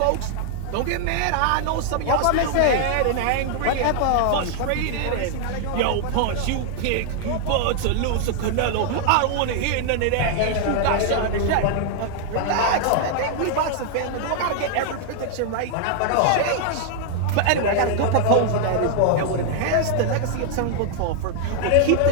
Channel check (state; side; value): different; both; correlation 0.00